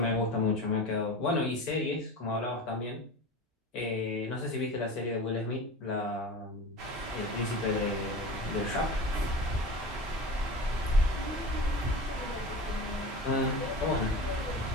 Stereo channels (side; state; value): both; normal; correlation 0.32